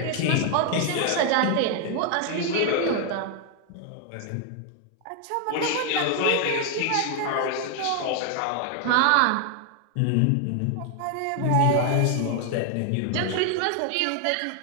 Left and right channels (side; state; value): both; different; correlation 0.00